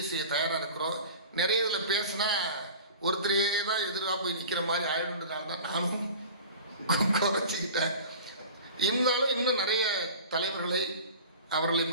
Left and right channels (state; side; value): inverted; both; correlation -0.39